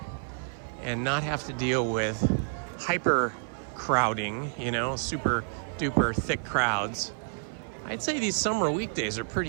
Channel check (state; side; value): silent; left; 58 dB below the other